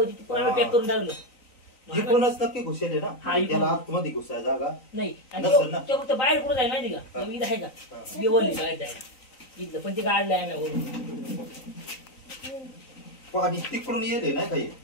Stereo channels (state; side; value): late; right; 3.9 ms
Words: तिकडून आम्ही पॅक करून टाकलं. इकडूनच नक्की घुसले ना. हा, इकडून. त्याला आतमध्ये घुसाय जागा नाही आणि नसेल ना. ते फक्त बाहेर कुठं जाय माहिती का इथं आहे का बेवली काय जायला इथलं पण ते काढलंय आम्ही वरून. पाणी तिकडून येले ना काही